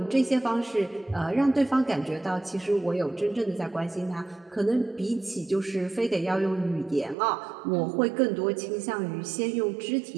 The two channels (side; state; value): left; drops out; at 7.2 s